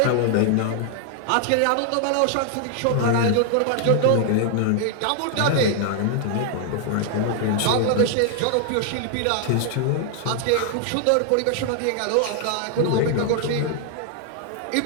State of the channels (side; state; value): both; different; correlation 0.00